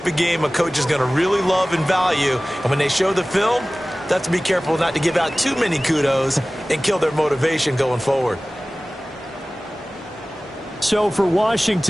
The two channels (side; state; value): both; normal; correlation 0.98